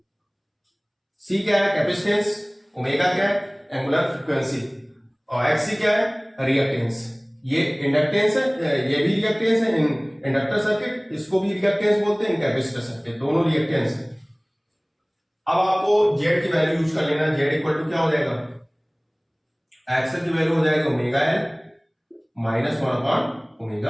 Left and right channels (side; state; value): both; identical; correlation 1.00